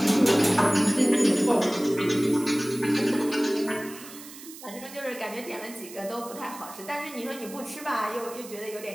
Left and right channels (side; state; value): right; noise; hiss, 16 dB below the sound